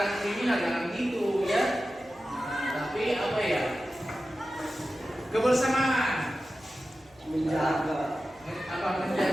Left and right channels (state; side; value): noise; right; hum, 30 dB below the sound